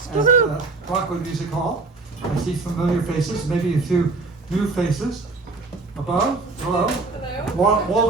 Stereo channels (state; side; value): quieter; left; 3.7 dB